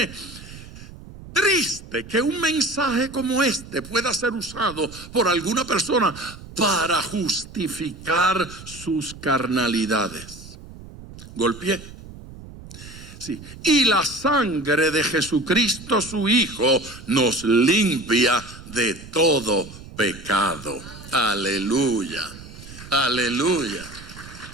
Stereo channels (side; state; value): right; noise; rumble, 16 dB below the sound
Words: Triste que un mensaje como este pueda ser usado por alguna persona para justificar sus carnalidades. Golpeé. Sí. Y la sangre de Jesucristo su Hijo nos limpia de todo pecado. Aleluya, aleluya.